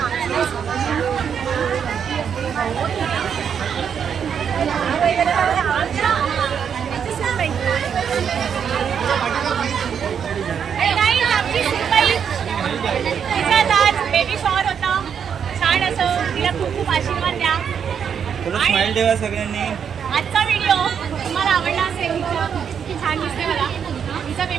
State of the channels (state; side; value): quieter; left; 7.6 dB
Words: बेबी शॉवर होता छान असं. तिला खूप खूप आशीर्वाद द्या. स्माइल ठेवा सगळ्यांनी. आजचा व्हिडिओ तुम्हाला आवडला असेल, छान दिसते मला, तिचा